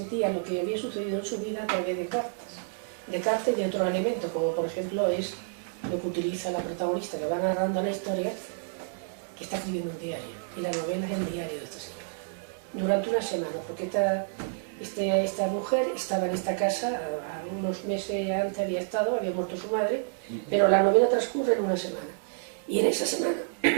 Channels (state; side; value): silent; left; 58 dB below the other